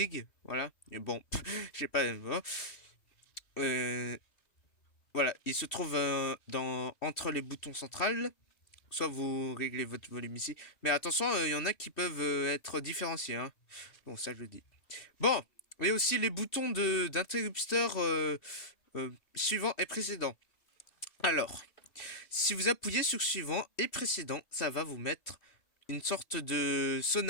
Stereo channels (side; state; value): right; late; 2.7 ms